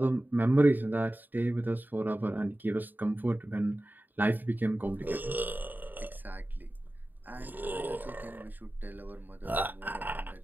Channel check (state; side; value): late; left; 0.089 ms